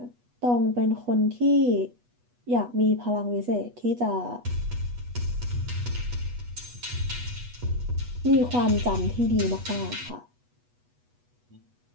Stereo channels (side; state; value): left; late; 8.2 ms